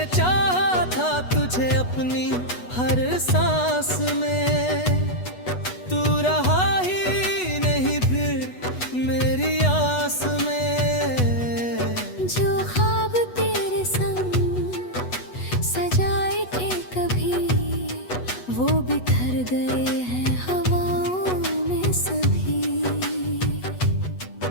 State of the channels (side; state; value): right; late; 8.2 ms